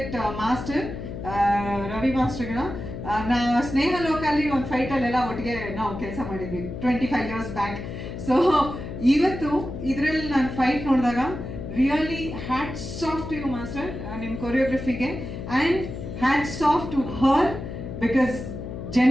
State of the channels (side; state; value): left; noise; hum, 8 dB below the sound